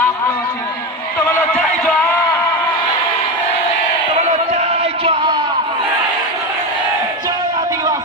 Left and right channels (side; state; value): both; normal; correlation 0.17